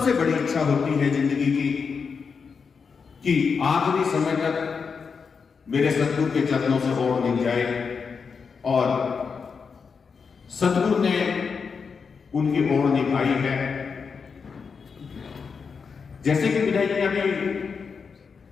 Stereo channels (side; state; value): right; quieter; 5.6 dB